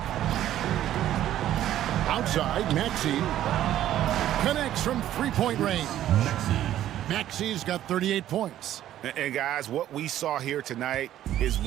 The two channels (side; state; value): left; quieter; 12.4 dB